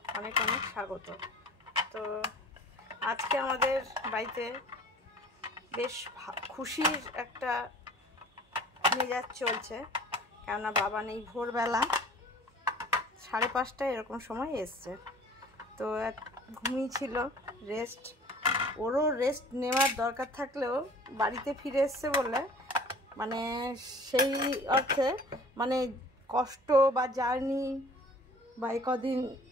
অনেক অনেক স্বাগত। তো আজকে আমাদের বাড়িতে বেশ খুশির একটা মেজাজ চলছে, কেননা বাবা নেই। ভোরবেলা 5:30 এরকম সময় এসছে, তো ঘুমিয়েছিল, রেস্ট। ওরও রেস্ট নেওয়ার দরকার থাকলেও বাড়িতে ফিরে এসছে বলে মানে সেই অর্থে মানে কষ্ট বা জার্নি বা কদিন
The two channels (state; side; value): normal; both; correlation 0.48